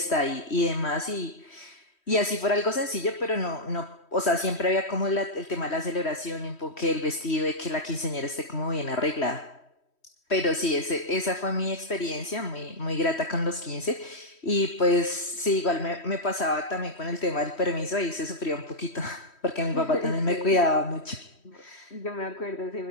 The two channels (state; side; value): late; right; 3.1 ms